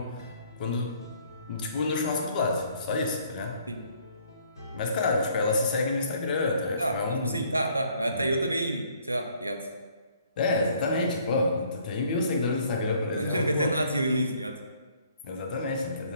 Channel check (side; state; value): both; inverted; correlation -0.62